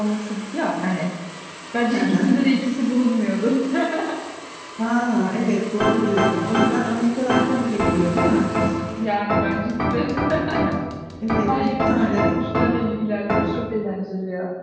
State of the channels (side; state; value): both; identical; correlation 1.00